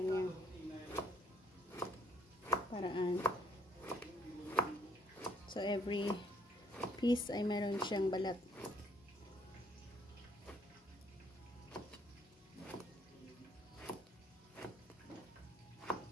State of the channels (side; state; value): both; normal; correlation 0.65